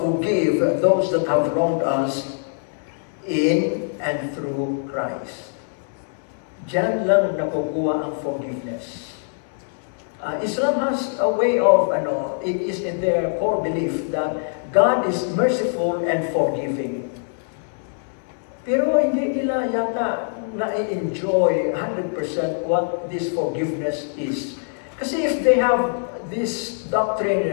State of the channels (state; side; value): silent; right; 63 dB below the other